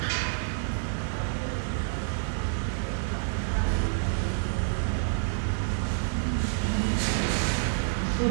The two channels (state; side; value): silent; left; digital silence